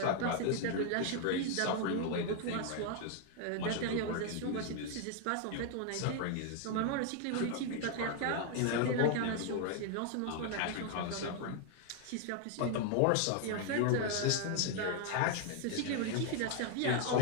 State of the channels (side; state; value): both; different; correlation 0.00